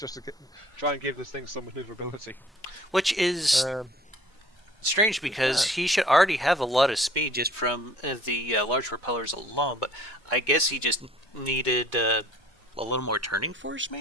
to try and give this thing some maneuverability. Which is strange because he should already have a lot of speed just from the large propellers alone, but I guess he just needed a little more turning force,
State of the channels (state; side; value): normal; both; correlation 0.53